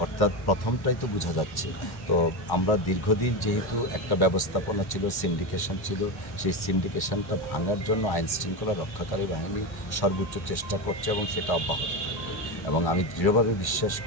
অর্থাৎ প্রথমটাই তো বোঝা যাচ্ছে। তো আমরা দীর্ঘদিন যেহেতু একটা ব্যবস্থাপনা ছিল, সিন্ডিকেশন ছিল, সেই সিন্ডিকেশনটা ভাঙার জন্য আইন শৃঙ্খলা রক্ষাকারী বাহিনী সর্বোচ্চ চেষ্টা করছে এবং সেটা অব্যাহত থাকবে। এবং আমি দৃঢ়ভাবে বিশ্বাস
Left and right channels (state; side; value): late; right; 1.1 ms